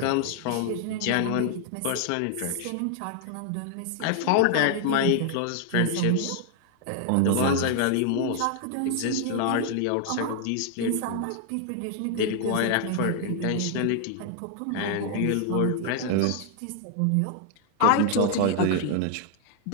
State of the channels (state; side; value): different; both; correlation 0.00